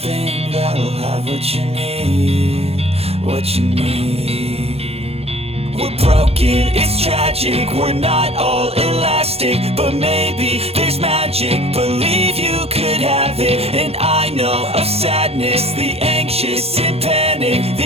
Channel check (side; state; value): left; late; 0.29 ms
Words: that'll have what you need, what you need. We're broken, it's tragic, we're not all elastic, but maybe there's magic, believe you could have it. And I know of sadness, the anxious and panic,